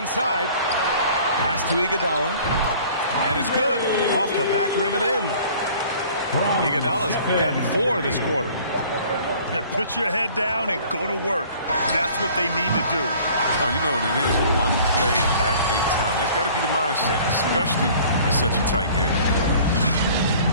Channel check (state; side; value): inverted; both; correlation -0.50